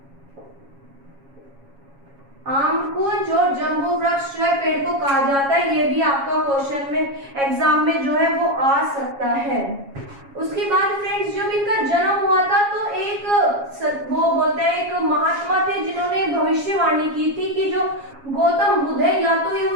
आम्रकुंज और जम्बू वृक्ष जो है पेड़ को कहा जाता है। ये भी आपका क्वेश्चन में एग्जाम में जो है वो आ सकता है। उसके बाद फ्रेंड्स जब इनका जन्म हुआ था तो एक वो बोलते हैं एक महात्मा थे जिन्होंने भविष्यवाणी की थी कि जो गौतम बुद्ध है या तो ये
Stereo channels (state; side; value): late; left; 7.3 ms